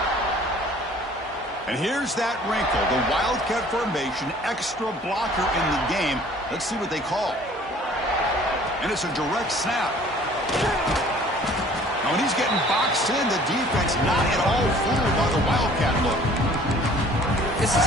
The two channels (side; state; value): both; normal; correlation 0.52